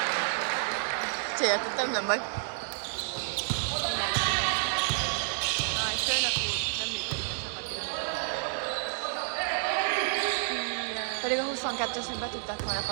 Céltottam, nem vagy. Aj, főnök úr, nem működik a csapatira. Pedig a 22-esnek be tudták volna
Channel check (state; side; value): silent; left; digital silence